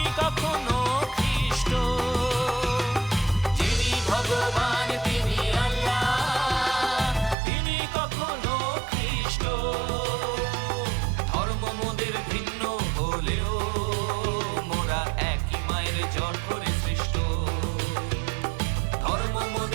কখনো খ্রিস্ট। যিনি ভগবান তিনি আল্লাহ, তিনি কখনো খ্রিস্ট। ধর্ম মোদের ভিন্ন হলেও মোরা একই মায়ের জঠরে সৃষ্ট। ধর্ম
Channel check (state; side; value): drops out; left; at 7.4 s